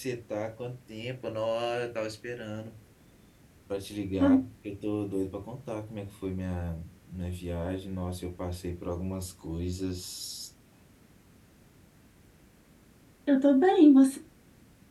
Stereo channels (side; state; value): both; identical; correlation 1.00